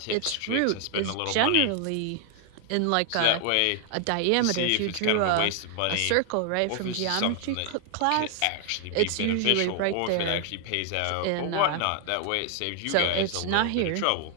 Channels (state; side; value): different; both; correlation 0.00